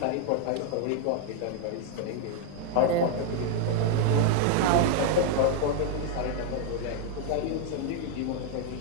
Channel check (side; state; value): both; different; correlation 0.00